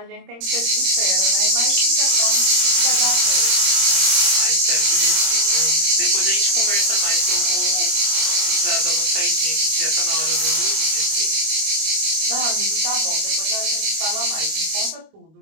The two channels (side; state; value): left; late; 26 ms